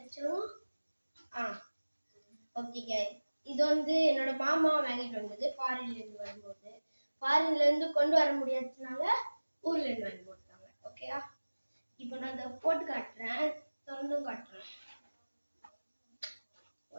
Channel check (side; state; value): both; inverted; correlation -1.00